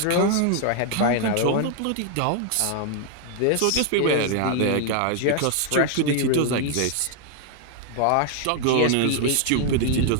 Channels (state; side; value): different; both; correlation 0.00